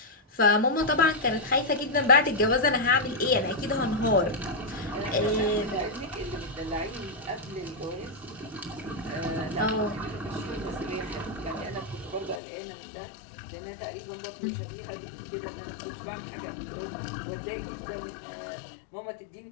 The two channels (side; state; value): right; drops out; at 12.4 s